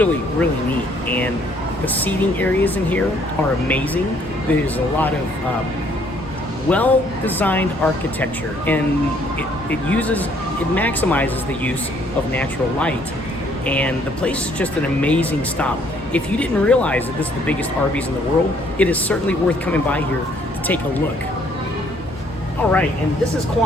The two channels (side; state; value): both; normal; correlation 0.64